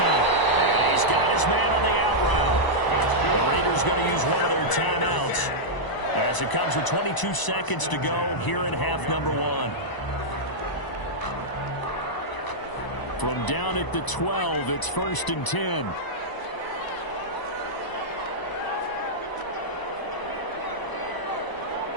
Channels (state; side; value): late; right; 1.0 ms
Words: And he's got his man on the out route. The Raiders going to use one of their timeouts as it comes with 22 seconds to go here in half number 1. From down at the 12, it's 1st and 10.